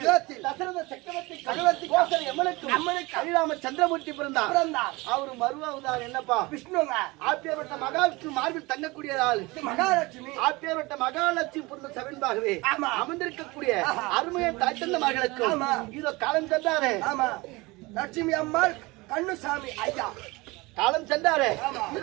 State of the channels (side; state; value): left; quieter; 23.2 dB